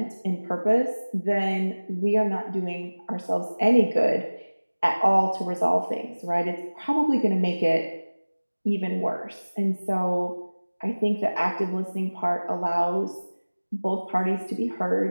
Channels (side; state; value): both; inverted; correlation -1.00